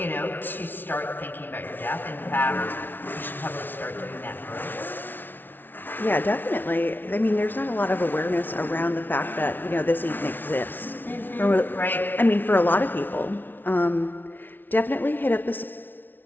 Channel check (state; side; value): late; right; 0.093 ms